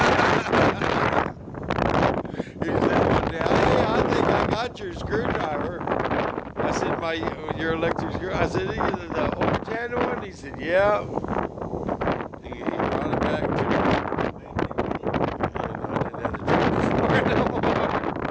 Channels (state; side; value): identical; both; correlation 1.00